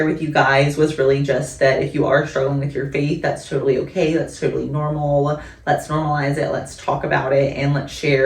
with you guys, was really just that if you are struggling with your faith, that's totally okay. That's totally normal. Let's normalize it. Let's talk about it, and let's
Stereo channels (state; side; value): identical; both; correlation 1.00